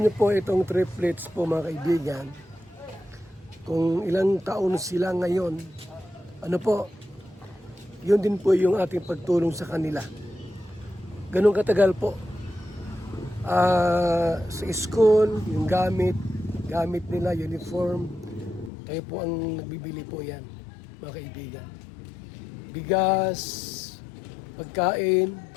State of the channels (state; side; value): drops out; right; at 18.7 s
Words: niyo po itong Triplets po mga kaibigan, kung ilang taon sila ngayon, ano po, yun din po yung ating pagtulong sa kanila. Ganun katagal po. Sa school, yung gamit nila, uniform, kayo po ang nagbibili po yan, mga kaibigan. Bigas, pagkain,